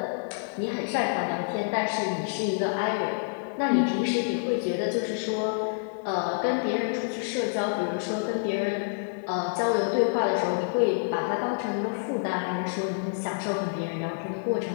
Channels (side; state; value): right; silent; digital silence